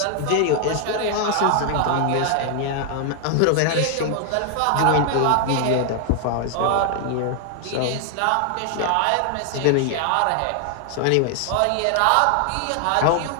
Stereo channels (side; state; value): both; different; correlation 0.00